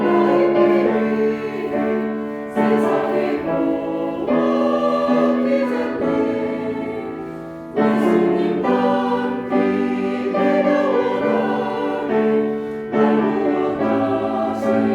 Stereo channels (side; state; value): both; identical; correlation 1.00